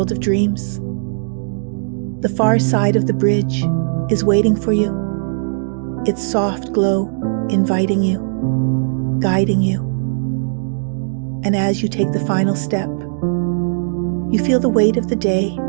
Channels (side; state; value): left; silent; digital silence